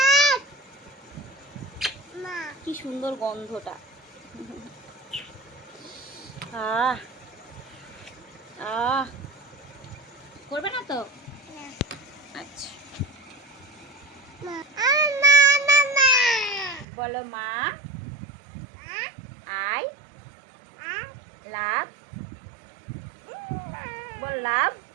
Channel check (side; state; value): left; drops out; at 16.9 s